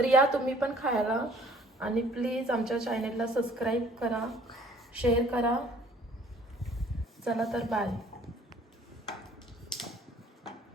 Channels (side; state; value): both; normal; correlation 0.56